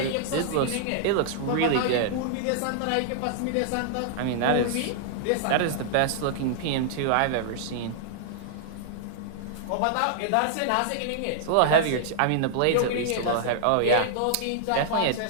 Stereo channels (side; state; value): both; different; correlation -0.01